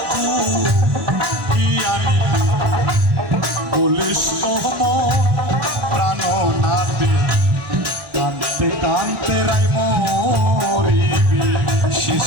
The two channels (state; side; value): late; left; 1.2 ms